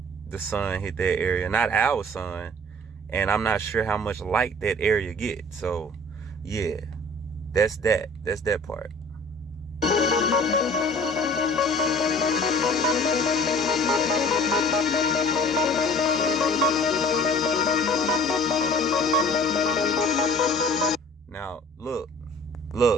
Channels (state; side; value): normal; both; correlation 0.48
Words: the sun hit that area, not our sun, and I'm not sure how much light that area gets. So yeah, that's that part. Now look,